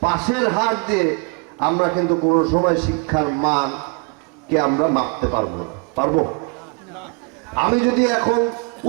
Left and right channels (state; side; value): quieter; left; 33.1 dB